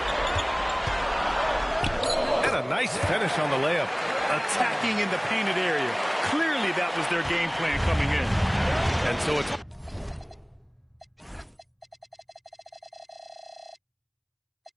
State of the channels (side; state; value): both; identical; correlation 1.00